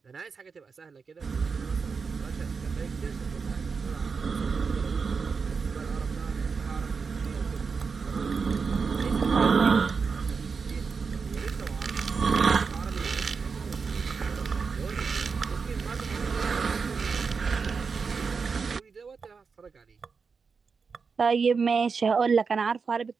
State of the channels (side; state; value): left; quieter; 5.3 dB